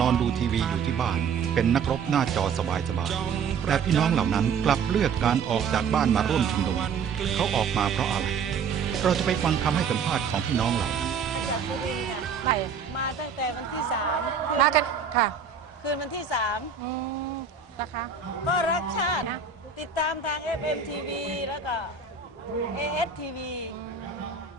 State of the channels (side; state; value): left; quieter; 6.2 dB